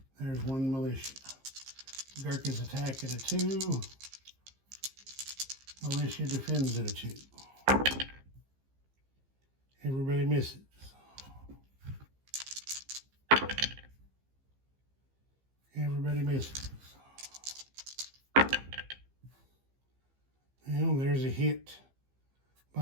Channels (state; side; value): late; left; 15 ms